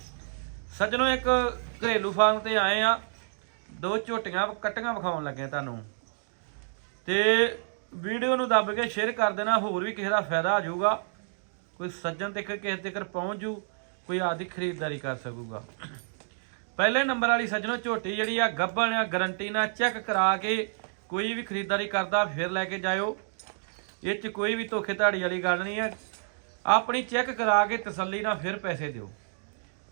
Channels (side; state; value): left; silent; digital silence